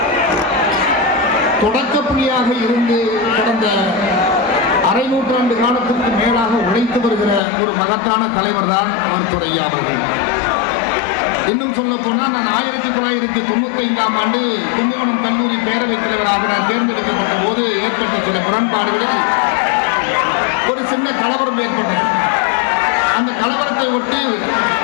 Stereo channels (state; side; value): drops out; right; at 7.4 s